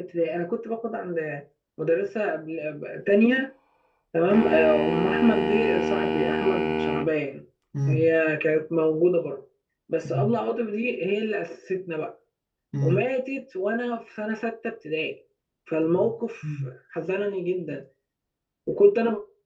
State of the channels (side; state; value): both; identical; correlation 1.00